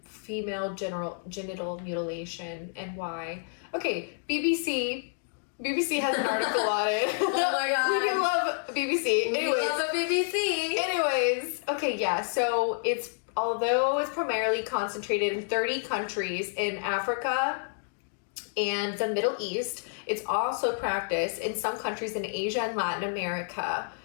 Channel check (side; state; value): right; silent; digital silence